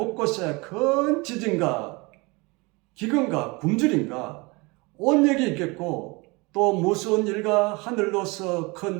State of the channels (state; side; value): quieter; left; 26.0 dB